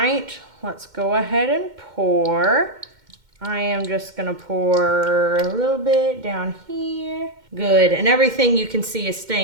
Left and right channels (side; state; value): left; late; 2.1 ms